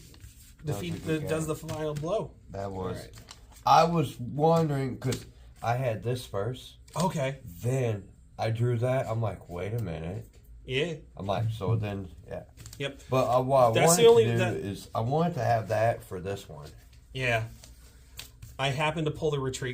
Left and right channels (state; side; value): identical; both; correlation 1.00